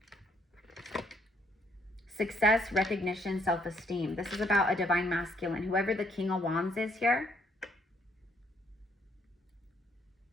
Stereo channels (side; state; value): both; normal; correlation 0.69